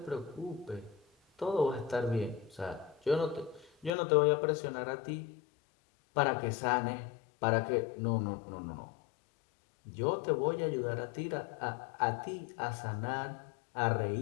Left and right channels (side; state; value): right; drops out; at 3.9 s